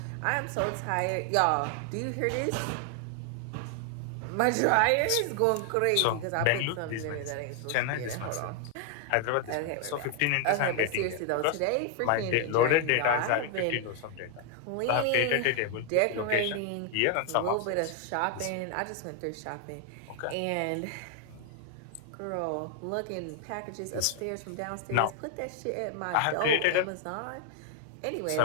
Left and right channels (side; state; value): both; different; correlation 0.00